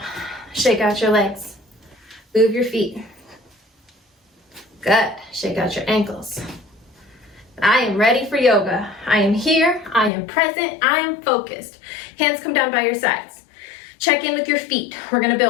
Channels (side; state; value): right; drops out; at 10.1 s